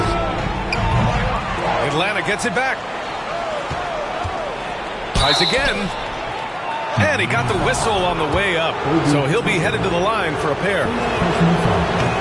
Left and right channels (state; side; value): identical; both; correlation 1.00